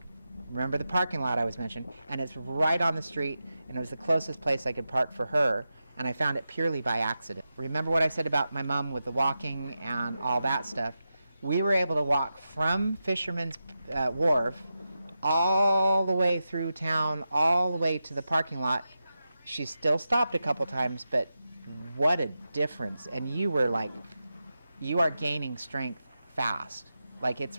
remember the parking lot I was mentioning, and it's right on the street, and it was the closest place I could park for her, and I found it purely by accident. Remember what I said about my mom with the walking and all that stuff? We were able to walk from Fisherman's Wharf all the way through town, all the way to the parking lot. She still stopped a couple times, but what a difference. And you are gaining strength fast. Like, it's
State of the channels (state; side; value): inverted; both; correlation -0.90